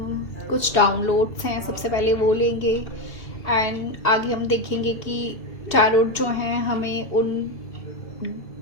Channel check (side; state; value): right; late; 2.7 ms